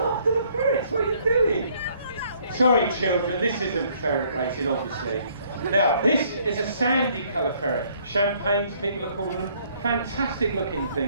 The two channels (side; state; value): both; inverted; correlation -0.64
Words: the ferrets. What are you doing? Sorry children, this isn't ferret racing obviously. Now this is a sandy colour ferret. Champagnes, people are calling them. Fantastic looking